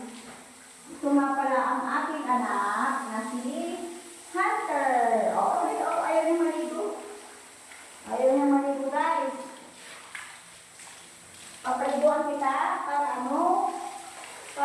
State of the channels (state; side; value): identical; both; correlation 1.00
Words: Ito nga pala ang aking anak na si Hunter. Ayaw niya maligo. Ayaw niya maligo, guys. Papaliguan kita para ano?